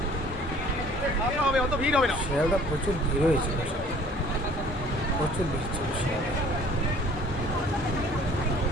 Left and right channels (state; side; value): normal; both; correlation 0.52